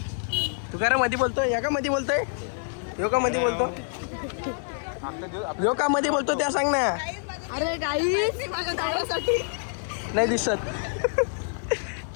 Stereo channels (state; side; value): silent; right; 60 dB below the other